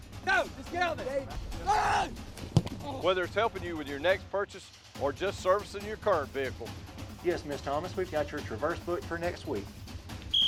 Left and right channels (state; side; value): identical; both; correlation 1.00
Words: Go, let's get out there. whether it's helping you with your next purchase or just servicing your current vehicle. Yes, Miss Thomas, we've got your Traverse booked for next week.